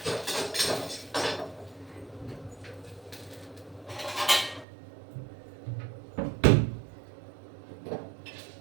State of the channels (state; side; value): drops out; left; at 4.7 s